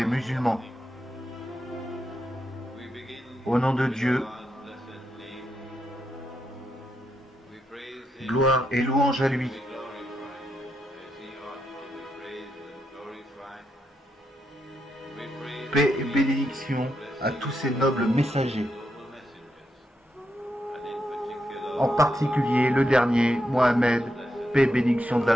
musulmans. Au nom de Dieu, gloire et louange à lui. Paix et bénédiction à tous ces nobles messagers. En particulier le dernier, Mohammed, paix et bénédiction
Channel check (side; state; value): both; normal; correlation 0.82